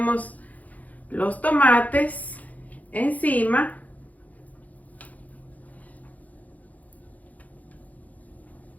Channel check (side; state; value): right; late; 0.076 ms